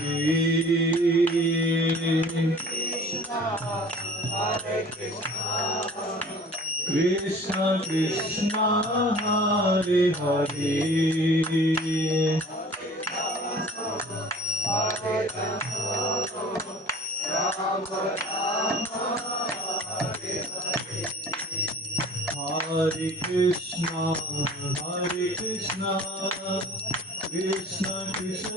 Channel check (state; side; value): normal; both; correlation 0.46